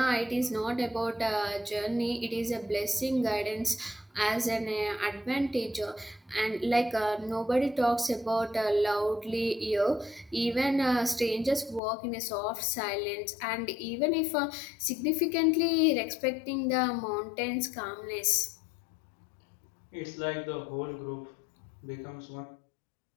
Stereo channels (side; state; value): right; drops out; at 11.8 s